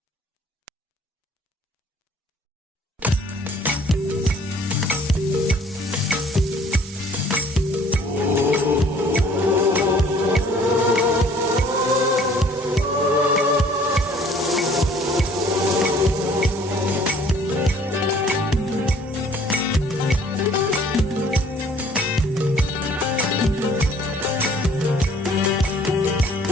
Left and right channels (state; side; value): normal; both; correlation 0.56